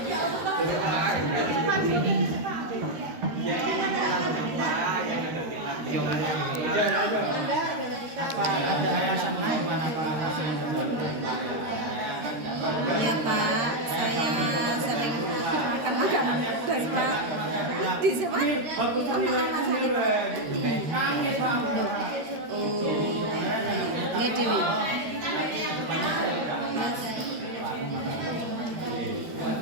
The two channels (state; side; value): late; left; 13 ms